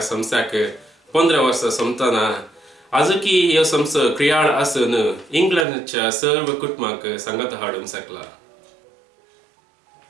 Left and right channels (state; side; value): drops out; left; at 5.7 s